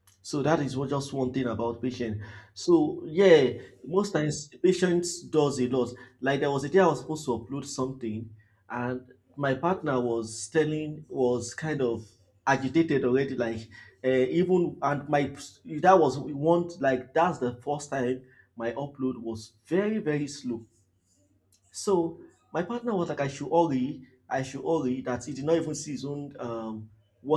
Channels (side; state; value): both; identical; correlation 1.00